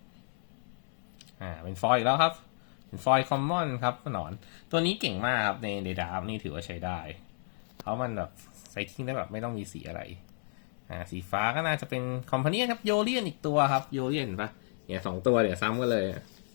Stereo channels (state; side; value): silent; right; 56 dB below the other